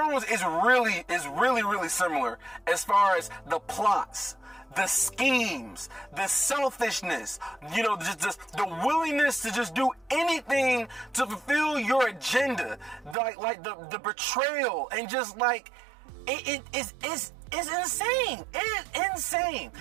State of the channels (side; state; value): left; drops out; at 13.2 s